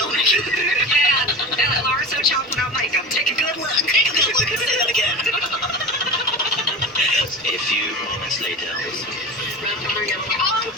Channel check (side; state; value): both; normal; correlation 0.30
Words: Megan. Yeah, and Laura so chopped without makeup. Take a good look. Take a good look and say that again. A few moments later.